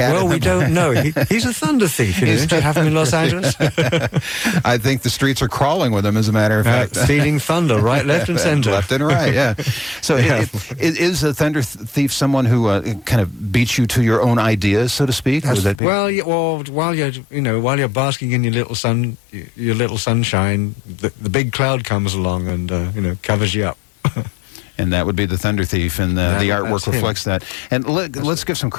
Well, we don't know. He's a thunder thief. Don't you have him in Los Angeles? I think the streets are crawling with him, as a matter of fact. Feeding thunder, right, left, and center. Left and right, yeah. So is a thunder thief someone who kind of beats you to your own ideas, so to speak? Would that be? Well, while you're basking in your little sunshine, the big cloud comes along and covers you up. And that would be the Thunder Thief, and the artwork reflects that. And let's give some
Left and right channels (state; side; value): drops out; right; at 15.8 s